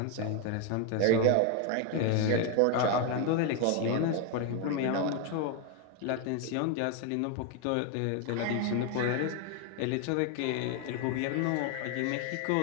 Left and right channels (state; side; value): different; both; correlation 0.01